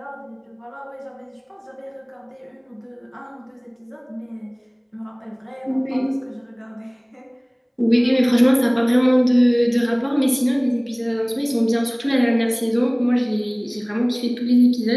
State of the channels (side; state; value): both; identical; correlation 1.00